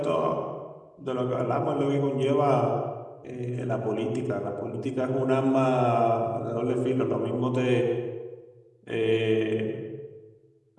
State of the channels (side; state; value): both; identical; correlation 1.00